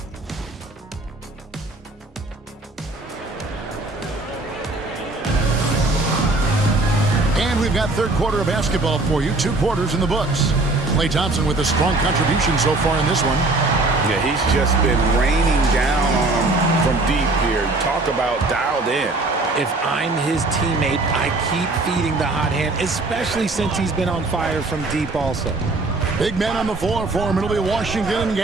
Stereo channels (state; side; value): quieter; left; 3.1 dB